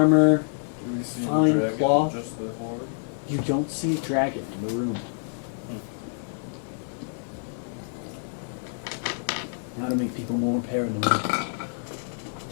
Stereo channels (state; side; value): silent; right; 56 dB below the other